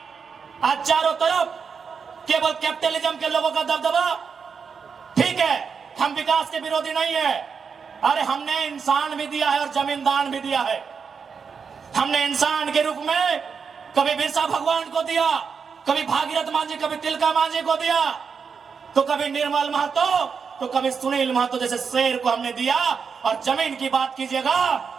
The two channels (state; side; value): quieter; left; 6.0 dB